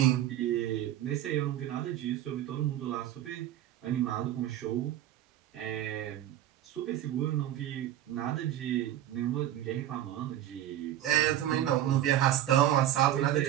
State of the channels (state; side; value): quieter; left; 12.4 dB